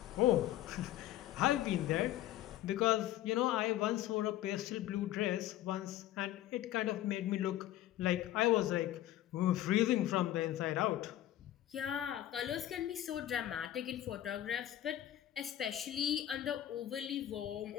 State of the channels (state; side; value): quieter; right; 13.2 dB